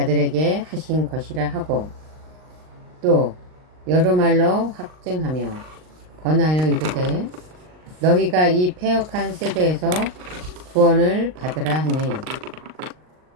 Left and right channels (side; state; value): left; late; 39 ms